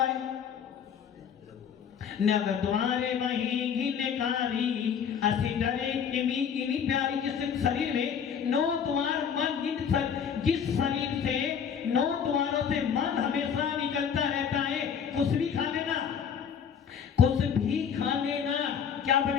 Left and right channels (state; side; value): quieter; right; 7.5 dB